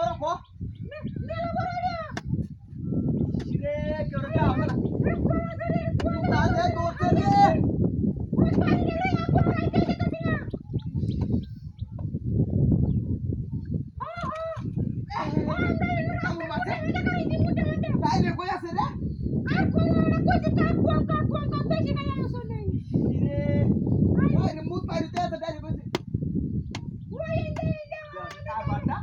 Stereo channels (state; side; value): identical; both; correlation 1.00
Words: কো রে কেউ রে আমরা তাতে দৌড়তে রে Dai koi আছে রে আর কই না কই তা কোন বেশি নাই আসো নাই রে ওই রে মুত পাইতে আছে ডাইরে কইছে ওই এই যা বাটা